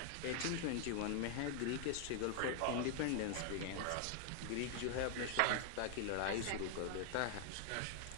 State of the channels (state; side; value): different; both; correlation 0.00